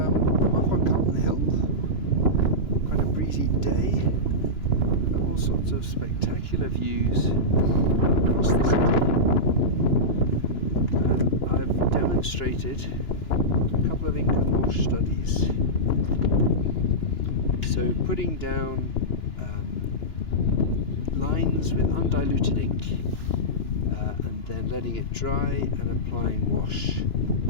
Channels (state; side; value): late; right; 2.9 ms